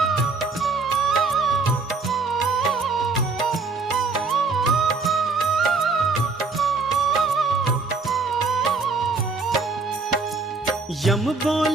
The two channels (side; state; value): left; quieter; 4.1 dB